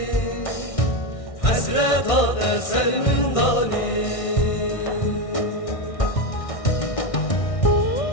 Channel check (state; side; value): late; right; 1.6 ms